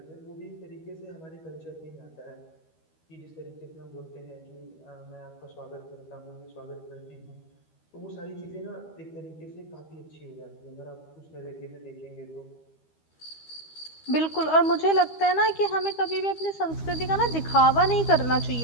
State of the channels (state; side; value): late; right; 13 ms